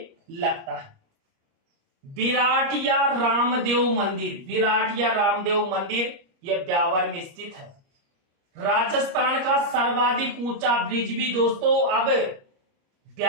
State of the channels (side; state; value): left; late; 30 ms